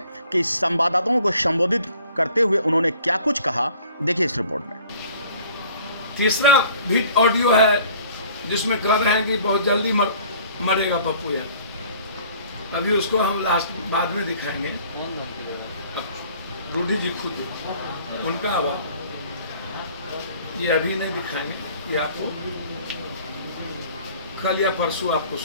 कि संवाददाताओं को संबोधित करते हुए उन्होंने क्या कुछ कहा, देखिए इस रिपोर्ट में। तीसरा भी ऑडियो है जिसमें कह रहे हैं कि बहुत जल्दी मरेगा पप्पू यादव। अभी उसको हम लास्ट बाद में दिखाएंगे। रूडी जी खुद उनका आवाज ये अभी नहीं दिखाएंगे, ये आपको कल या परसों आपको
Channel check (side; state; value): both; inverted; correlation -0.53